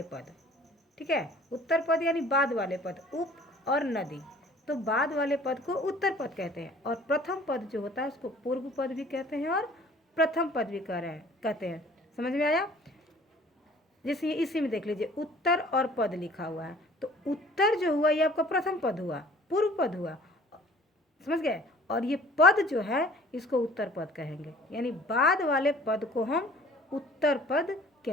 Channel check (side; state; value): both; normal; correlation 0.51